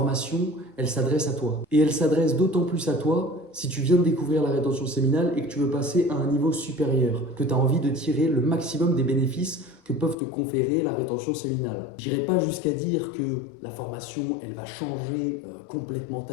elle s'adresse à toi. Et elle s'adresse d'autant plus à toi si tu viens de découvrir la rétention séminale et que tu veux passer à un niveau supérieur, que tu as envie de tirer le maximum des bénéfices que peuvent te conférer la rétention séminale. J'irai pas jusqu'à dire que la formation, elle va changer complètement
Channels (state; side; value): drops out; right; at 10.2 s